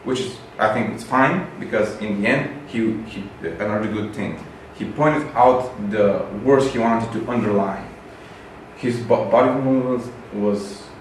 which is, I think, it's fine, because in the end, he another good thing. He pointed out the words he wanted to underline. His body movement was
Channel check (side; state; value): both; identical; correlation 1.00